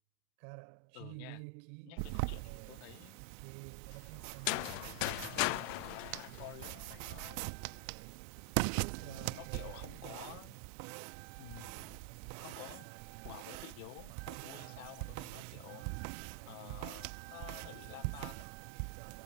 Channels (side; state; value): both; different; correlation 0.00